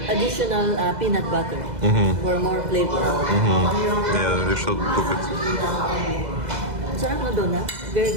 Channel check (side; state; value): left; late; 2.0 ms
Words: additional peanut butter for more flavor. Yeah, we should cook it. Sarap na doon, ha? Very